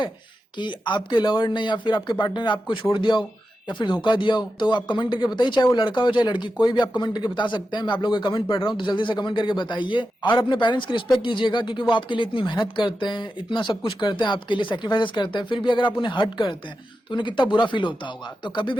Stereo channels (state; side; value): normal; both; correlation 0.90